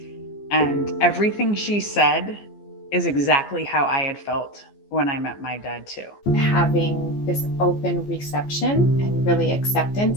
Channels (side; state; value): right; late; 14 ms